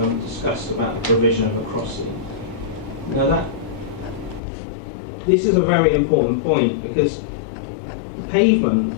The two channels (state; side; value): drops out; right; at 4.4 s